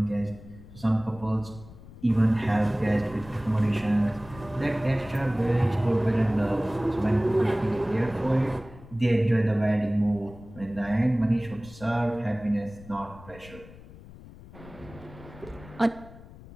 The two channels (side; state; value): left; noise; rumble, 19 dB below the sound